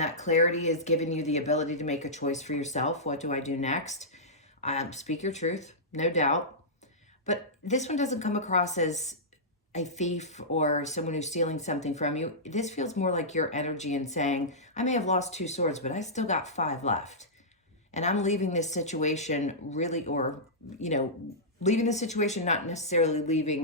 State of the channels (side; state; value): both; normal; correlation -0.15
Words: clarity is giving you the ability to make a choice for yourself. What do I do next? Speak your truth, no doubt. But this one doesn't come across as a thief or someone who's stealing something from you. This feels more like your energy and saying, I may have lost 2 swords, but I still got 5 left. And I'm leaving this situation really, or, leaving the situation, not necessarily